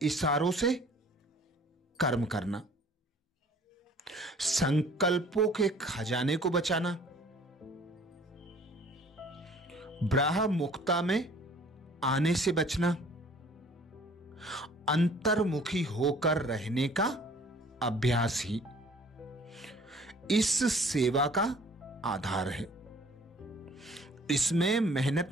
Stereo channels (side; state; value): both; normal; correlation 0.53